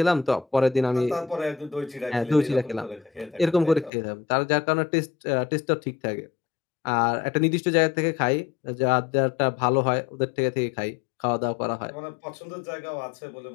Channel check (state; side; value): drops out; right; at 3.9 s